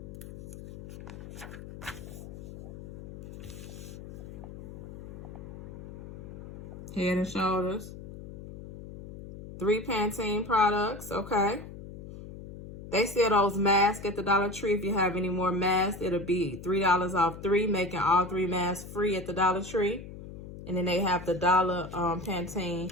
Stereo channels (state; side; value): noise; left; hum, 13 dB below the sound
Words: Head and Shoulders. 3 Pantene products, okay. They sell those masks at the Dollar Tree. If you have any more masks, it'll be $3 off 3, making all 3 masks free at the Dollar Tree. And then they have the dollar Pantene,